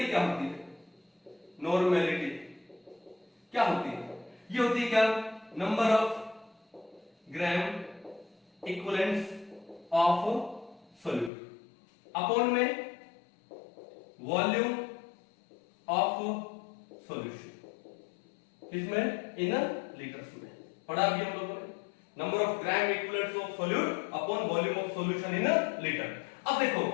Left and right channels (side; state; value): right; drops out; at 11.3 s